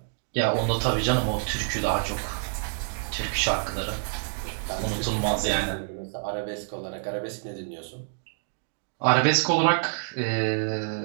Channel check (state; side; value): silent; left; digital silence